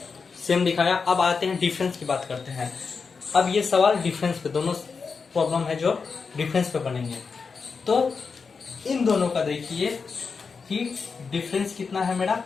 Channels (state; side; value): quieter; right; 5.1 dB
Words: सेम दिखाया। अब आते हैं डिफरेंस की बात करते हैं। अब ये सवाल डिफरेंस पे, दोनों प्रॉब्लम है जो डिफरेंस पे बनेंगे। तो इन दोनों का देखिए कि डिफरेंस कितना है मेरा,